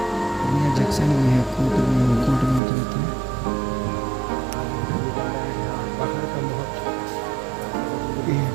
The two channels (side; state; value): left; drops out; at 2.6 s